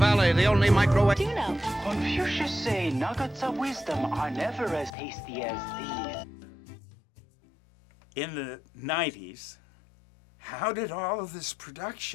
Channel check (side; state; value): right; drops out; at 5.0 s